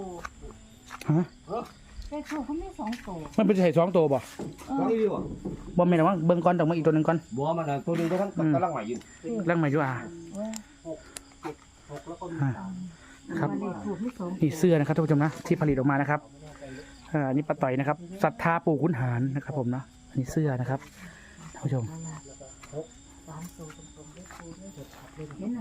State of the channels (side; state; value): both; identical; correlation 1.00